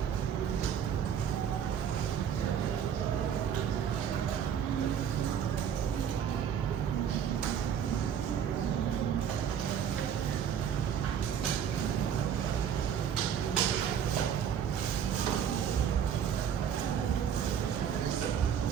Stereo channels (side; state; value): left; quieter; 8.4 dB